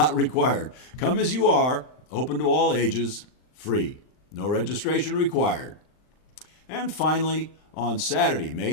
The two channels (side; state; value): right; late; 39 ms